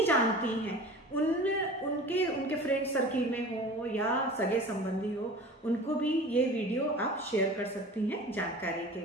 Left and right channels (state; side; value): normal; both; correlation 0.39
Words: जानती हैं उनके फ्रेंड सर्किल में हो या सगे संबंधी हो, उनको भी ये वीडियो आप शेयर कर सकती हैं जानकारी के